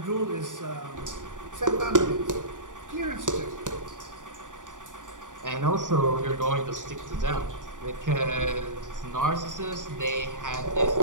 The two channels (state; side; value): late; left; 0.87 ms